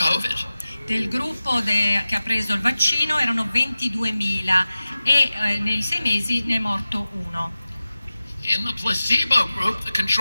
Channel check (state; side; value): inverted; both; correlation -0.95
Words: Del gruppo che ha preso il vaccino erano 22.000 e nei 6 mesi ne è morto uno. In the placebo group, the